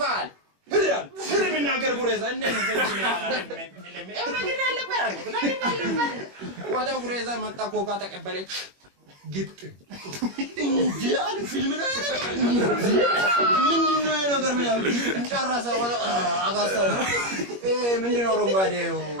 ህሪያል ህሪ ምናገር ጉሬዛ እንደምን ተንጅ ይላል ያው ነገር አለበት ወጣው ጉሬዛ መጣ ኮካ ተቀበለች ግጥ እንዴ አለ ፊልም ነው ምንድነው ነገር ምን ያው ጨረሰ ወጣ አጋሳ ምንድነው ሮንጋዴው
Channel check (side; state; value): left; late; 21 ms